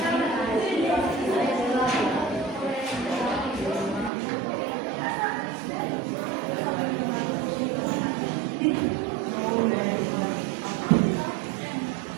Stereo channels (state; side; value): drops out; left; at 4.1 s